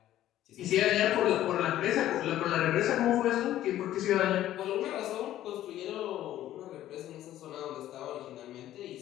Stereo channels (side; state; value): right; quieter; 13.1 dB